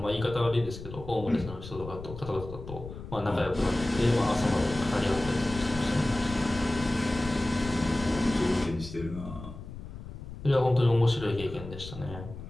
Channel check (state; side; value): noise; left; rumble, 12 dB below the sound